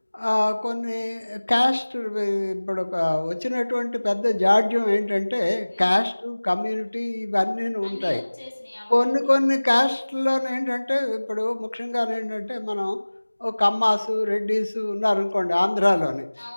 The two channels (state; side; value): inverted; both; correlation -1.00